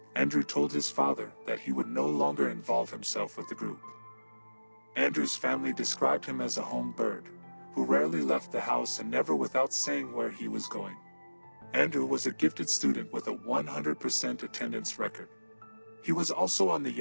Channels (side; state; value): both; inverted; correlation -1.00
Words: Andrew told his father that he would no longer involve himself with the group. Andrew's family described him as a home bird, who rarely left the house and never without saying where he was going. Andrew was a gifted student with a 100% attendance record. He was also on the